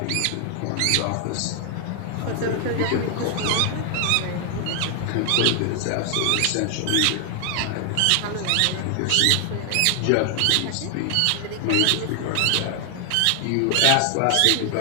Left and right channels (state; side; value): different; both; correlation 0.00